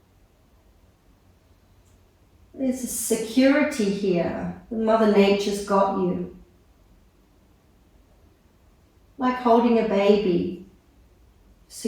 There's a security here. Mother Nature's got you. like holding a baby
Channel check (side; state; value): both; identical; correlation 1.00